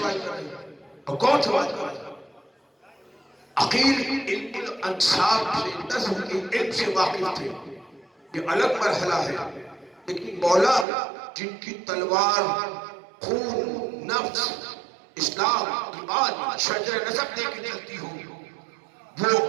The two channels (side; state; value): left; drops out; at 10.9 s